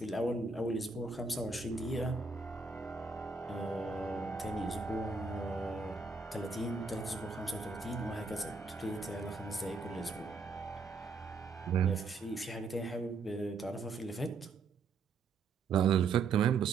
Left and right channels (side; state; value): left; quieter; 4.4 dB